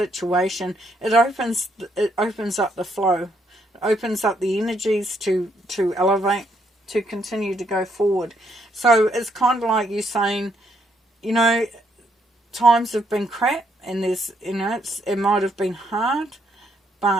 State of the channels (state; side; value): normal; both; correlation 0.74